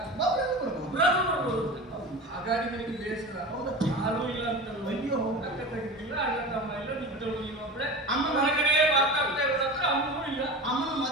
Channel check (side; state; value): both; normal; correlation 0.31